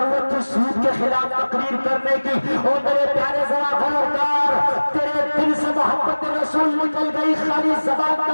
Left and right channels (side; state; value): both; inverted; correlation -1.00